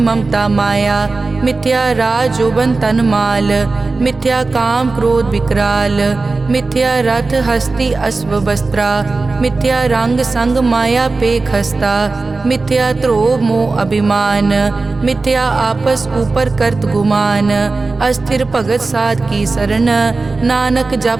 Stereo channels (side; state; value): left; quieter; 3.7 dB